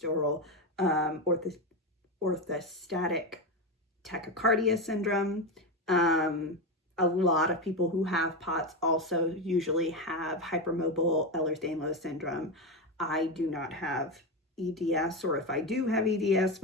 orthostatic tachycardia syndrome. A lot of people who have POTS also usually have hypermobile Ehlers-Danlos syndrome. I do not have EDS, or if I do have EDS,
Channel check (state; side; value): normal; both; correlation 0.14